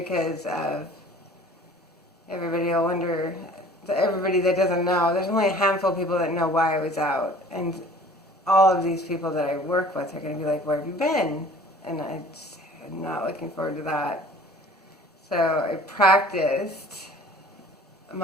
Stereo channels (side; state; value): both; normal; correlation 0.48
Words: of everybody that doesn't know. There's only a handful of people that know why I was out. And all of these people that I work with are going to be like, where have you been? And I'm not looking forward to that. So I practiced